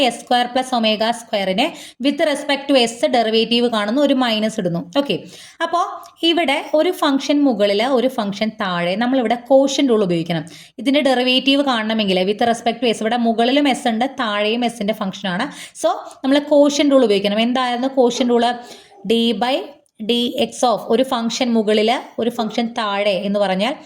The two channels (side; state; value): both; identical; correlation 1.00